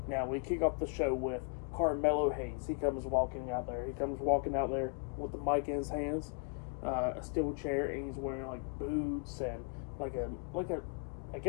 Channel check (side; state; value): right; quieter; 36.0 dB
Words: Now, we kick off the show with Carmelo Hayes. He comes walking out there. He comes walking out there with the mic in his hands, a steel chair, and he's wearing like boots and like a I